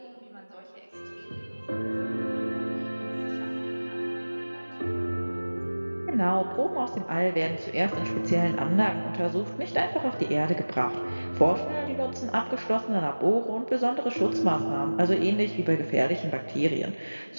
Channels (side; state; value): both; inverted; correlation -1.00